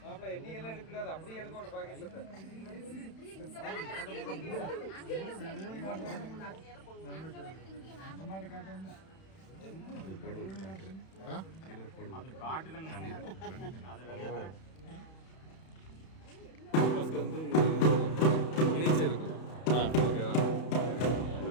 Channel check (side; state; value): right; late; 31 ms